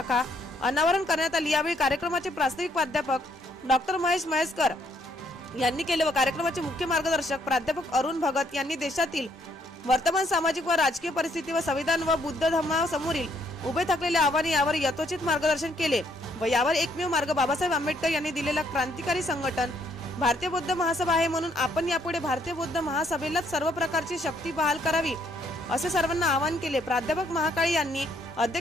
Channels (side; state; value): both; normal; correlation 0.69